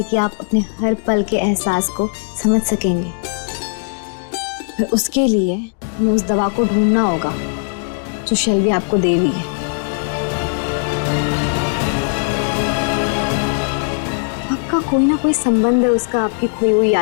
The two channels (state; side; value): silent; right; digital silence